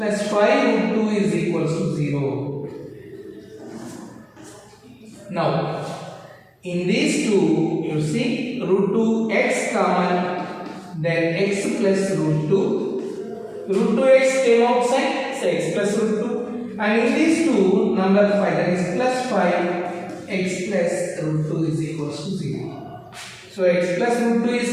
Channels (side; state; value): both; identical; correlation 1.00